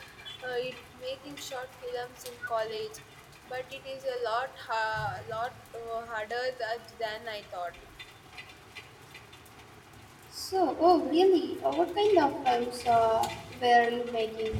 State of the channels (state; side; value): identical; both; correlation 1.00